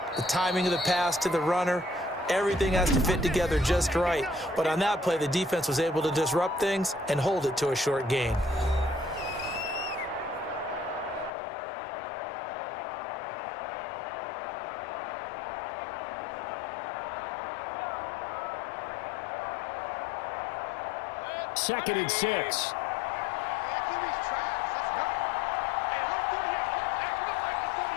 the timing of the pass to the runner, everything has to fit together just right. But on that play, the defense was able to disrupt things and hold it to a short gain. Second and 6.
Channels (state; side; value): drops out; right; at 11.3 s